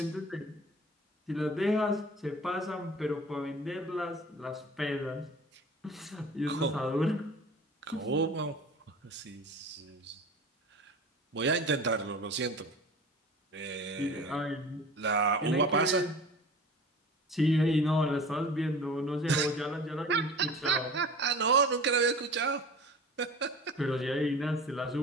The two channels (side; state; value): both; normal; correlation 0.39